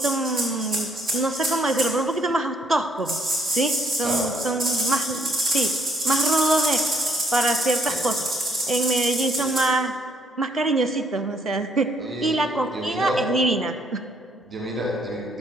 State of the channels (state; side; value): normal; both; correlation 0.69